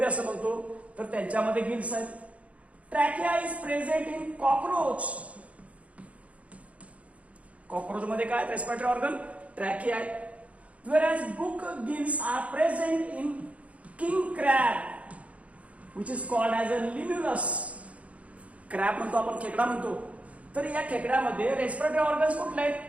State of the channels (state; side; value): late; left; 0.065 ms